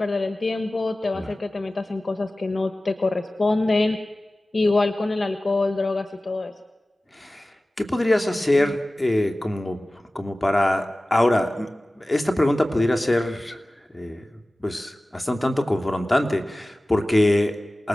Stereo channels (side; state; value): both; normal; correlation 0.97